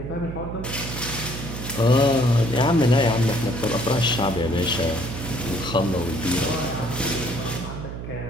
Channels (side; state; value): right; noise; hum, 8 dB below the sound